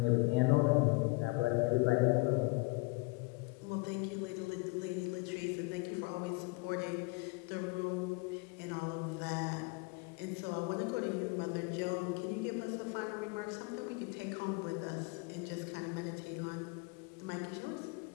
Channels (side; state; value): right; quieter; 26.4 dB